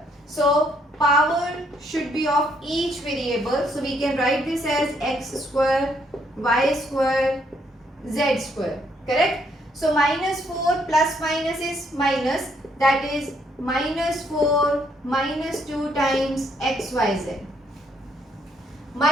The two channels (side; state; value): both; normal; correlation 0.71